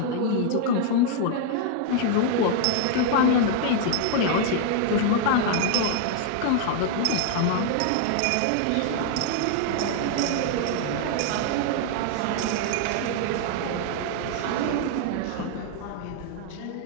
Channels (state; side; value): different; both; correlation 0.00